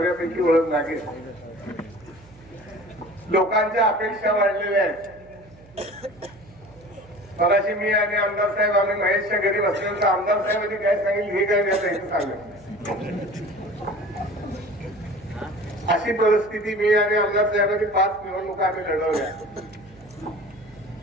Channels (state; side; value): noise; right; hum, 24 dB below the sound